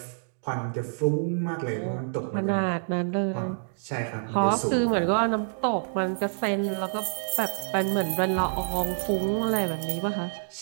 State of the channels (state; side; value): silent; left; digital silence